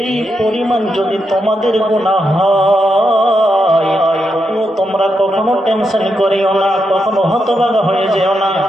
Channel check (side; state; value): both; normal; correlation 0.83